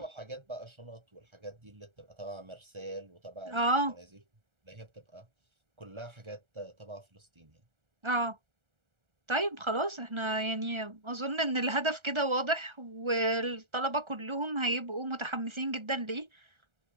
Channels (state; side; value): late; left; 1.4 ms